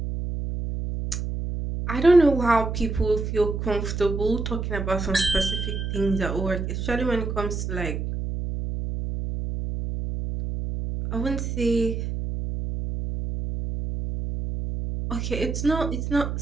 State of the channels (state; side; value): noise; right; hum, 3 dB below the sound